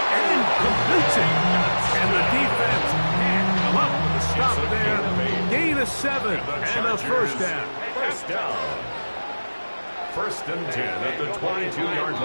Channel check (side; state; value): both; inverted; correlation -1.00